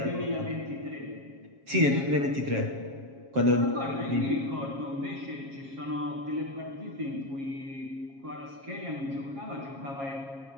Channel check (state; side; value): late; left; 7.3 ms